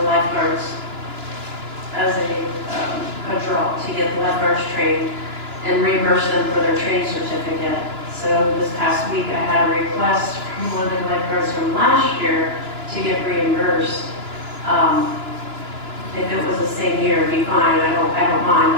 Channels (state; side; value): late; left; 2.9 ms